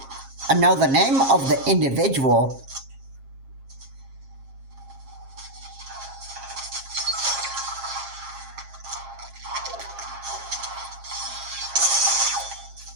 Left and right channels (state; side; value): late; left; 7.4 ms